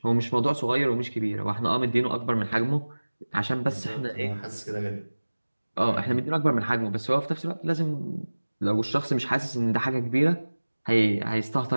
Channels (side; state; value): both; inverted; correlation -1.00